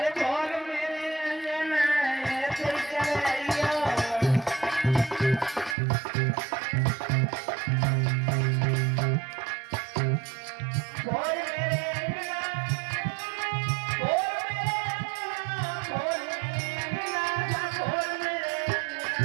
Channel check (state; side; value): drops out; left; at 5.8 s